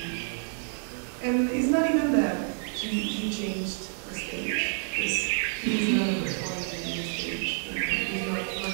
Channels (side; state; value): left; silent; 56 dB below the other